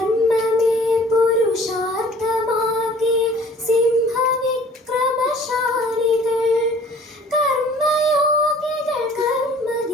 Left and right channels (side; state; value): both; normal; correlation 0.51